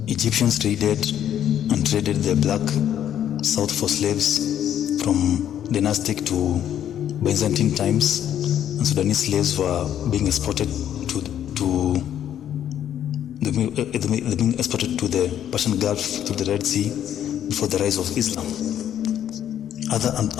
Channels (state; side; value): quieter; right; 10.3 dB